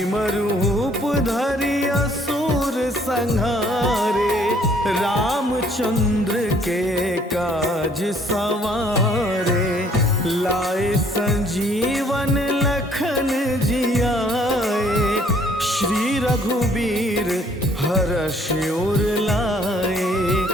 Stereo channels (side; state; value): both; normal; correlation 0.62